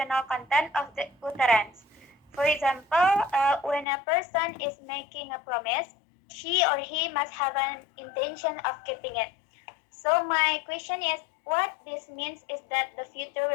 content of the utterance. For example, when a person is making a promise, she or he must have an intention of keeping it. So my question is, what this means is that the future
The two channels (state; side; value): drops out; right; at 3.9 s